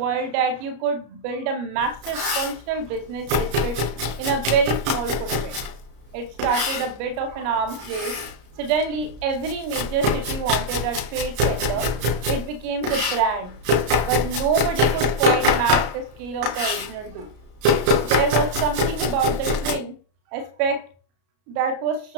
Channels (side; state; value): left; late; 33 ms